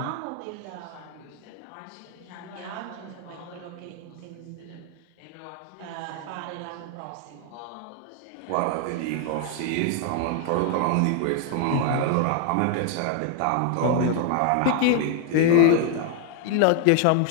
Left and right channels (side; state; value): both; different; correlation 0.00